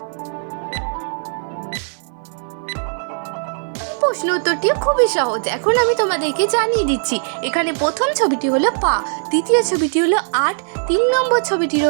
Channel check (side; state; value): left; silent; 58 dB below the other